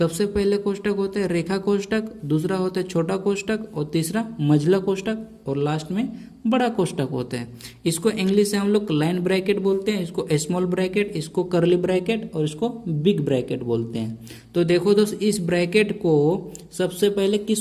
पहले कोष्टक होता है रेखा कोष्टक, दूसरा होता है छोटा कोष्टक और तीसरा मझला कोष्टक और लास्ट में बड़ा कोष्टक होता है। इसको इंग्लिश से हम लोग लाइन ब्रैकेट बोलते हैं, इसको स्मॉल ब्रैकेट, इसको कर्ली ब्रैकेट और इसको बिग ब्रैकेट बोलते हैं। तो देखो दोस्त, इस ब्रैकेट को सबसे पहले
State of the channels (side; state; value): both; identical; correlation 1.00